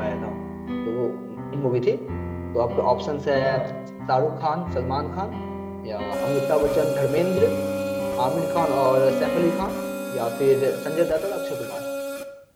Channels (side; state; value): both; identical; correlation 1.00